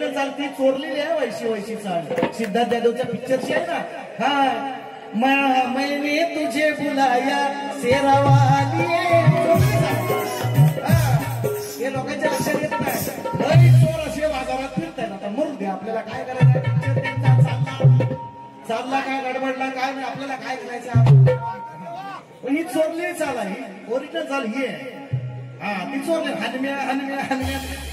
चाल ती चोरलेली आहे. वैशी चाल सिद्धार्थ जाधवच्या पिक्चरची आहे ना. हा मैंने तुझे बुलाया शेरावाली, हे लोकांच्या लक्षात येत नाही. चोर असे बाजारात फिरताय. आता मरू दे, आपल्याला काय करायचं. चालला काय गडबडला काय नाही, आपल्याला काय करायचं. ही चोरली चाल आहे, ओरिजिनल चाल ही आहे. हा ती चोरली. हनम्या हनम्या हनम्या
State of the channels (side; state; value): both; identical; correlation 1.00